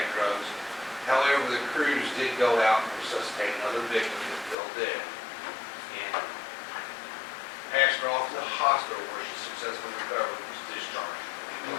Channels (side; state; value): right; drops out; at 4.5 s